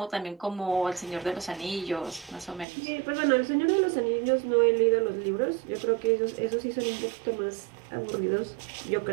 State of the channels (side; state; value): left; drops out; at 2.7 s